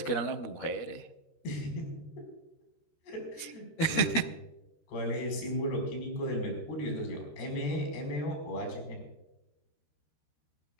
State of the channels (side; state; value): right; late; 13 ms